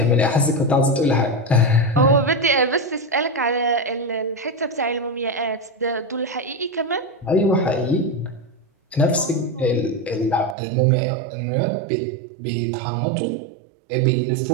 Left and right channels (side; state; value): left; drops out; at 10.6 s